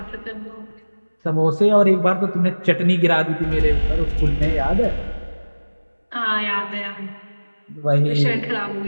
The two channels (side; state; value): both; inverted; correlation -1.00